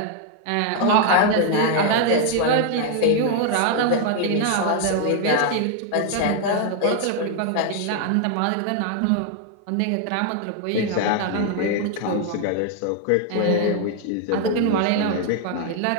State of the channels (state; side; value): different; both; correlation 0.00